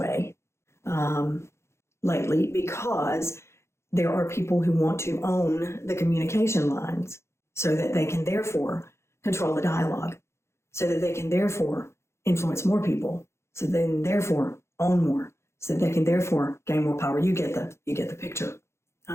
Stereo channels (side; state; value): right; late; 0.13 ms